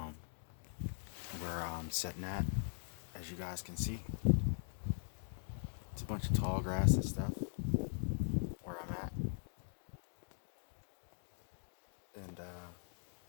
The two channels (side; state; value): right; silent; digital silence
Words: where I'm sitting at, as you guys can see. It's a bunch of tall grass and stuff where I'm at. And